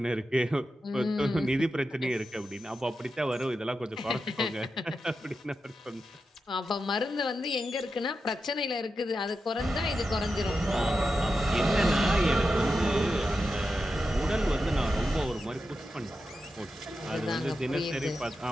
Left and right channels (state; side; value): normal; both; correlation 0.89